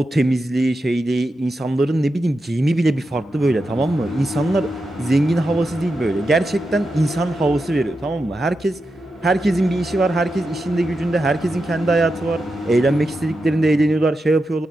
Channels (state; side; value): normal; both; correlation 0.89